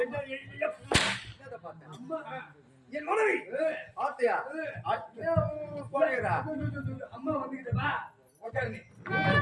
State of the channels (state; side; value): identical; both; correlation 1.00